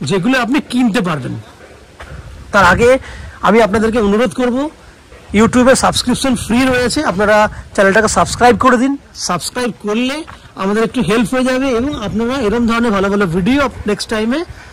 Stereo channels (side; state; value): both; identical; correlation 1.00